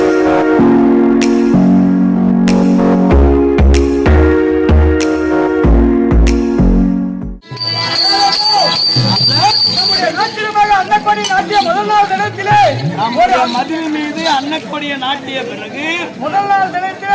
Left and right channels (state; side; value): identical; both; correlation 1.00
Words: மதில் மீது அன்னக்கொடிய நாட்டிய பிறகு முதல் நாள்